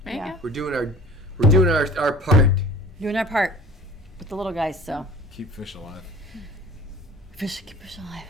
There you Yeah. go. We're doing our part. doing our part with the little guys. So Keep fish alive. keep fish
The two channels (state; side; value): normal; both; correlation 0.45